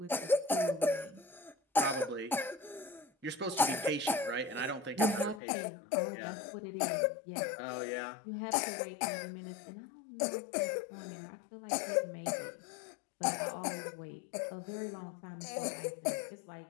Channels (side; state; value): right; drops out; at 5.4 s